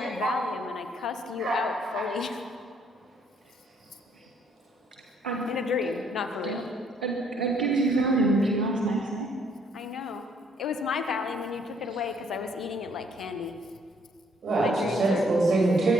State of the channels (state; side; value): normal; both; correlation 0.66